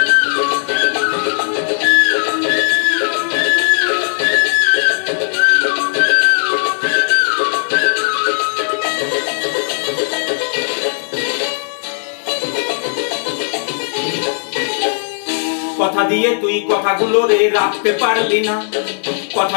কথা দিয়ে তুই কথাগুলো রে রাখতে পারলি না, কথা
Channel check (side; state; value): right; silent; digital silence